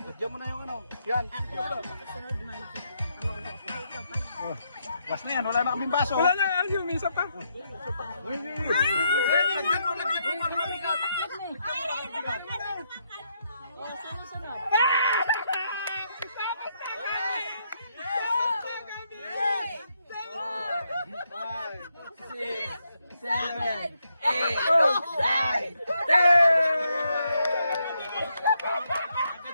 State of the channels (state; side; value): inverted; both; correlation -0.78